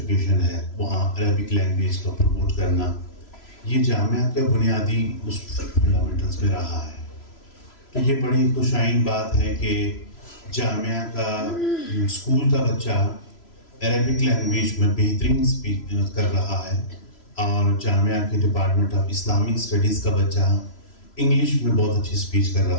ہے وہاں عربک لینگویج کو پروموٹ کرنا، یہ جامعہ کے بنیادی فنڈامنٹلز میں رہا ہے. تو یہ بڑی خوشائن بات ہے کہ جامعہ کا اسکول کا بچہ عربک لینگویج میں بہترین اسپیک کر رہا ہے اور جامعہ کے ڈپارٹمنٹ آف اسلامک اسٹڈیز کا بچہ انگلش میں بہت اچھی اسپیچ کر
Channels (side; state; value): right; late; 3.0 ms